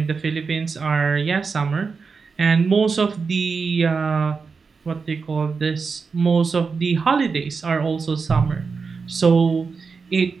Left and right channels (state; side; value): quieter; left; 5.0 dB